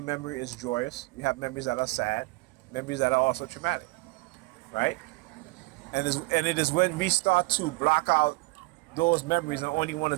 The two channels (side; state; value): left; quieter; 24.6 dB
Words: memory is joyous. You have memories that are sad, memories that are also traumatic, right? And it is when we start to block out those memories and only want